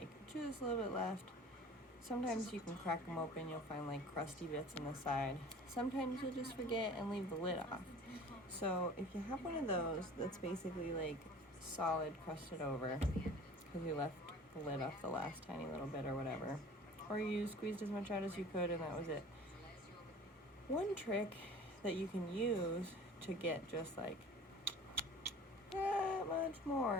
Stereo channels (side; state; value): both; normal; correlation 0.43